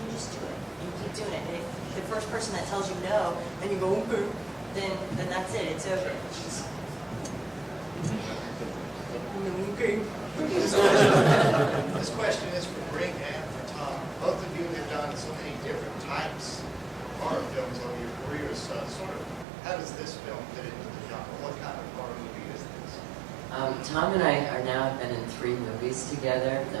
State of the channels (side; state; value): left; drops out; at 19.5 s